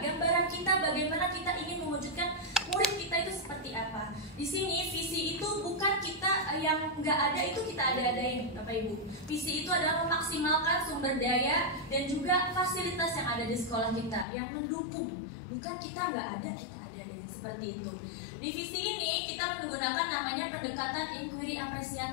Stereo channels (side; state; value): right; drops out; at 14.2 s